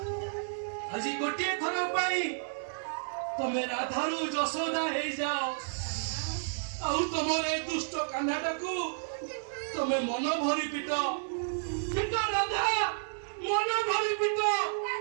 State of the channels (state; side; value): silent; left; digital silence